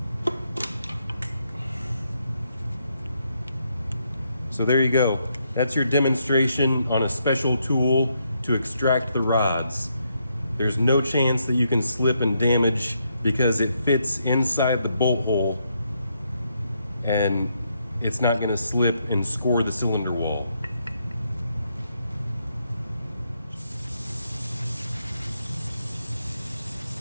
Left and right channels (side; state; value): both; inverted; correlation -0.77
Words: So there you go. That's your demonstration on a special tool to extract the rods. There's no chance that you can slip and damage because it fits inside the bolt hole and it's not going to slip and score the cylinder wall.